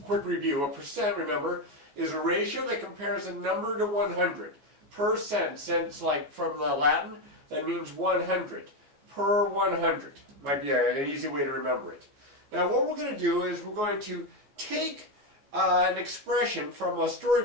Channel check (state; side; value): late; left; 14 ms